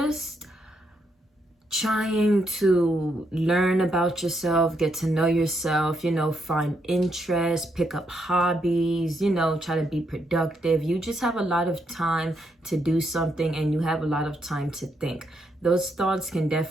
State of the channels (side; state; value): both; normal; correlation 0.78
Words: trying to learn about yourself, get to know yourself, you know, find interest, pick up hobbies, you know, try to be productive. You just have a lot of time to do something, and you have a lot of time to think. Those thoughts can